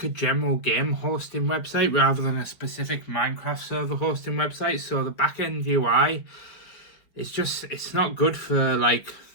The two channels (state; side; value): late; right; 5.2 ms